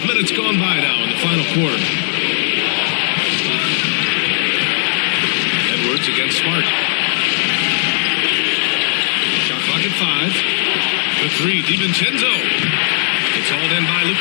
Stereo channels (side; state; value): right; silent; digital silence